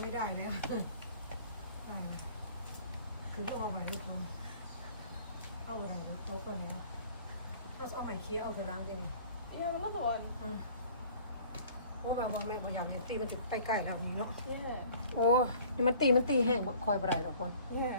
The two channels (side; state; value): both; inverted; correlation -0.51